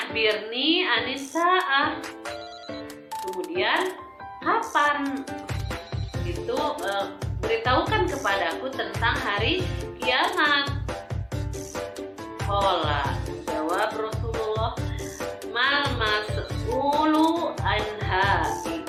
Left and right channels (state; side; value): identical; both; correlation 1.00